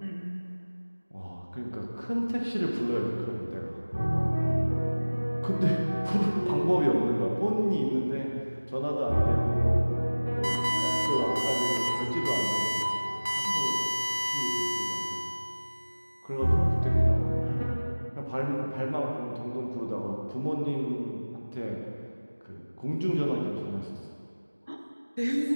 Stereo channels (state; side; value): inverted; both; correlation -1.00